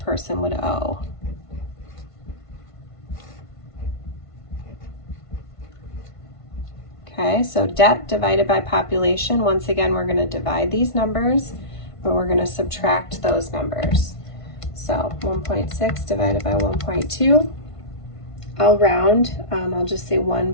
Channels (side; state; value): right; late; 1.5 ms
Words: would owe. Okay, so debt divided by population. Once again, we're going to divide these numbers, but we're going to subtract those numbers. So 1.6 divided by 1.2. I'll round. I'll just say